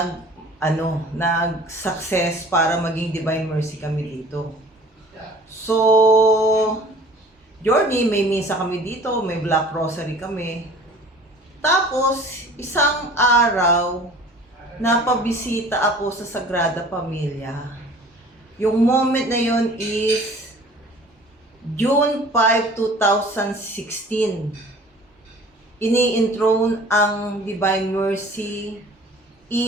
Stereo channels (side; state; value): both; normal; correlation 0.47